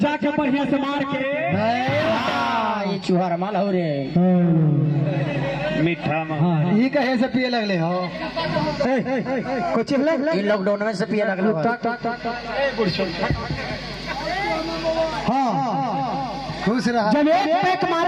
जाके बढ़िया से मार के ये चूहर माल हो रे मीठा में ये कहे से पिए लगले हो कुछ ये लॉकडाउन में से पिए लगल खुश रहा। जब एक पैक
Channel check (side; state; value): both; identical; correlation 1.00